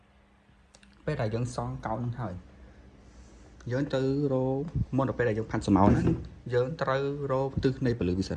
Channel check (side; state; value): both; identical; correlation 1.00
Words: ពេលដែលយើងសង់កោណហ្នឹងហើយយើងទៅរោមុនដល់ពេលដែលយើងផាត់ស្រមោលហ្នឹងយើងត្រូវរោទិសនៃពលឺវាសិ